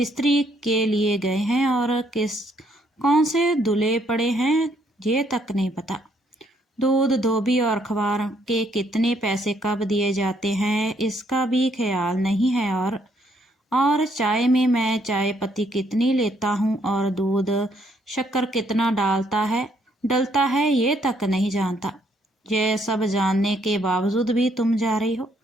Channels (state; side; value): normal; both; correlation 0.70